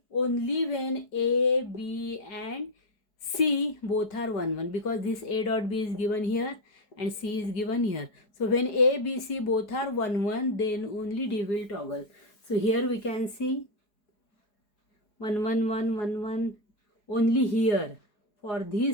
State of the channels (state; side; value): late; right; 4.8 ms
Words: only when A, B and C both are 1, 1 because this A dot B is given here and C is given here. So when A, B, C both are 1, 1, then only D will toggle. So here we can see 1, 1, 1, 1, 1. Only here for